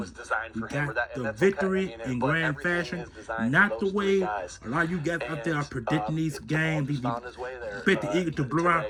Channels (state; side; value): identical; both; correlation 1.00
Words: We got the victory in grand fashion. Not the way a lot of you guys out there are predicting these games. Bet the Eagles to blow our